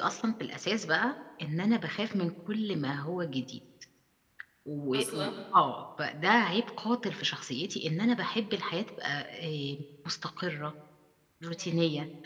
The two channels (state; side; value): identical; both; correlation 1.00